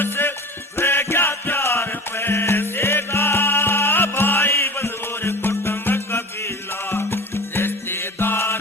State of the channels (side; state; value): both; normal; correlation 0.36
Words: रह गया प्यार पैसे का। भाई बंधुर कुटुंब कबीला रिश्तेदार